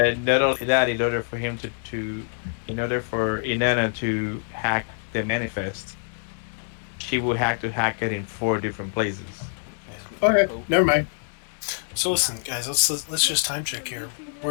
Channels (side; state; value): right; silent; digital silence